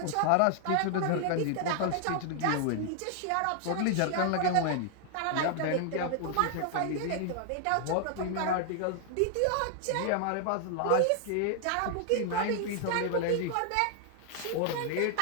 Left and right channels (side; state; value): both; different; correlation 0.00